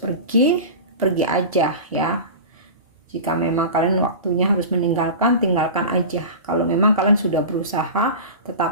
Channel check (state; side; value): inverted; both; correlation -0.30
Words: aja ya. Jika memang kalian waktunya harus meninggalkan, tinggalkan aja. Kalau memang kalian sudah berusaha